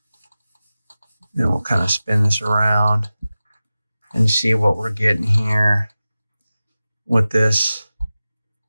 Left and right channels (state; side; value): inverted; both; correlation -0.95